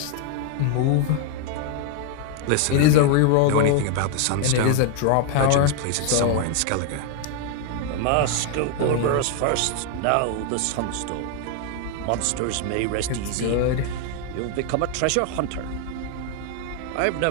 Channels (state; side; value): different; both; correlation 0.00